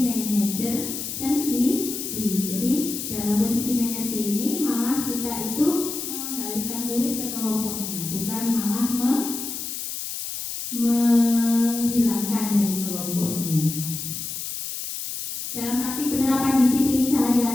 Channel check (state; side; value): noise; left; hiss, 6 dB below the sound